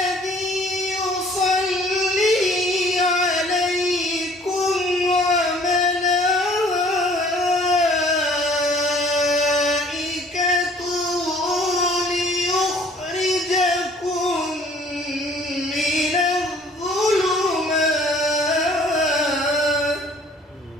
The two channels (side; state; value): both; normal; correlation 0.55